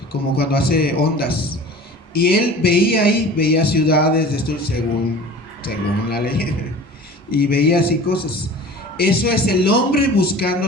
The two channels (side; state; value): both; normal; correlation 0.41